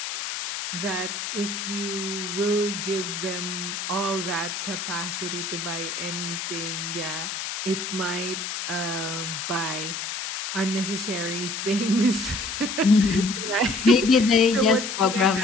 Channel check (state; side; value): noise; left; hiss, 5 dB below the sound